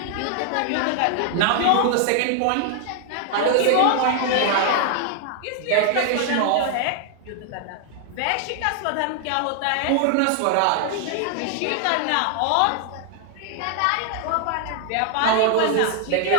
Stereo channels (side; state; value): both; different; correlation 0.00